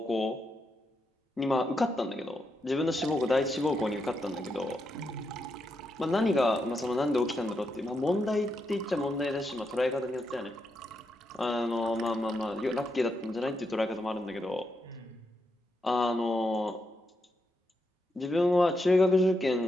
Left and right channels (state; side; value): normal; both; correlation 0.83